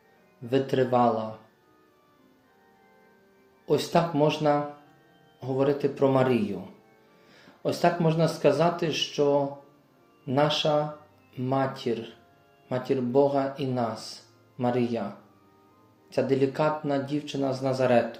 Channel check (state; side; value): identical; both; correlation 1.00